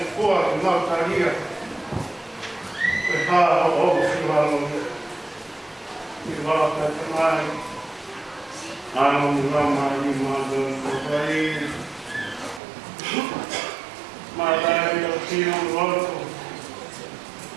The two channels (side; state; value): left; drops out; at 12.6 s